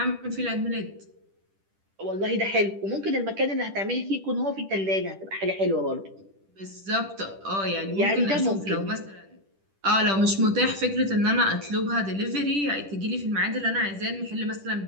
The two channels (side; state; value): left; late; 10 ms